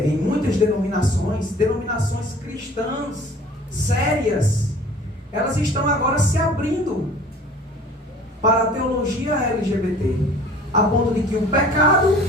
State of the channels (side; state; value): both; normal; correlation 0.48